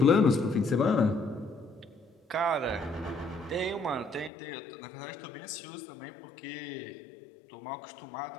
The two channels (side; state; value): right; drops out; at 4.3 s